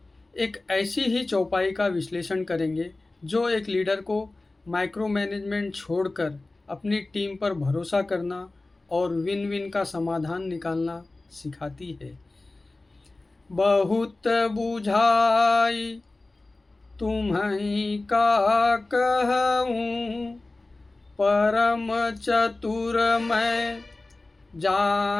एक ऐसी ही चौपाई का विश्लेषण करेंगे जो एक लीडर को माइक्रो मैनेजमेंट छोड़कर अपनी टीम पर भरोसा करना और विन विन का समाधान निकालना सिखाती है। बहुत बुझाई तुम्हीं का कहूँ, परम चतुर मैं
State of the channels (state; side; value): quieter; right; 3.1 dB